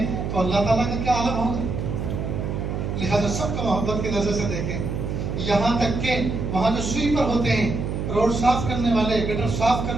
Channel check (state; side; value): noise; right; hum, 3 dB below the sound